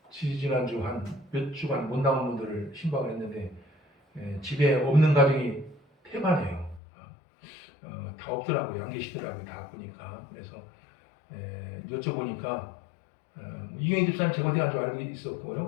지난주 한 몇 주간 못 나온 분들을 신방을 했는데 집에 없는 가정이 태반이에요. 다 없더라고요. 안 계시더라고요. 다 보니까. 그래서 여쭤보니까 이경희 집사님 제가 어디 간 줄 알고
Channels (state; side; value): drops out; right; at 6.8 s